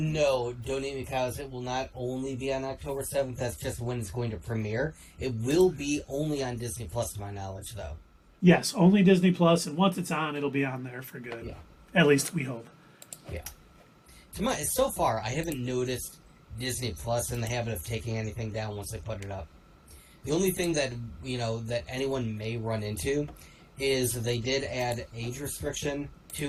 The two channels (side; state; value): both; identical; correlation 1.00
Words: no, Don't Eat Me Cows. It will not only be on October 7th. That's just when it's going to premiere. It will be only on Disney Plus, to my knowledge, though. Yes, only Disney Plus, and once it's on, it'll be on there for good. Yeah. At least we hope. Yeah. So far, I haven't noticed Disney Plus in the habit of taking anything down once they put it up. The only thing that that anyone may run into is they did add age restriction